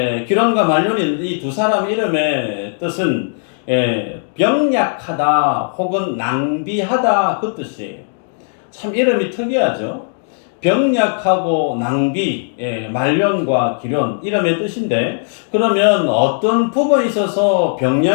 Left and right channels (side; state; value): right; silent; digital silence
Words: 기론과 말론이 이 두 사람 이름의 뜻은 병약하다 혹은 낭비하다 그 뜻이에요. 참 이름이 특이하죠. 병약하고 낭비, 말론과 기론 이름의 뜻인데, 그러면 어떤 부분에 있어서